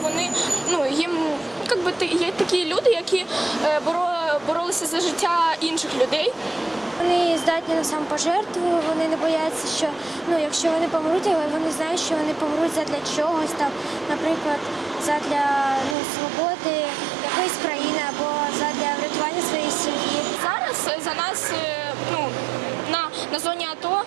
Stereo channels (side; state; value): left; drops out; at 16.0 s